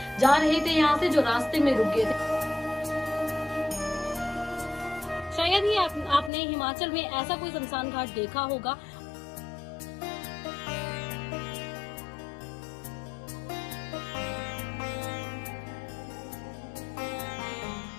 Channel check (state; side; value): drops out; right; at 6.3 s